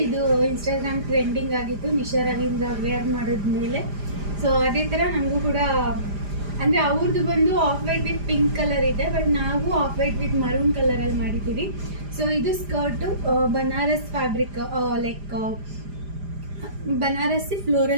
ಇದು ಇನ್ಸ್ಟಾಗ್ರಾಮ್ ಟ್ರೆಂಡಿಂಗ್ ಆಗಿತ್ತು ನಿಶಾ ರವೀಂದ್ರ ವೇರ್ ಮಾಡಿದ್ಮೇಲೆ. ಸೊ ಅದೇ ಥರ ನನಗೂ ಕೂಡ ಅಂದರೆ ಅವ್ರದ್ದು ಬಂದು off white with pink colour ಇದೆ, ಬಟ್ ನಾವು ಆಫ್ ವೈಟ್ ವಿತ್ ಮರೂನ್ ಕಲರಲ್ಲಿ ಮಾಡಿದ್ದೀವಿ. ಸೊ ಇದು skirt Banaras fabric, like Banarasi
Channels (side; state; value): left; late; 4.9 ms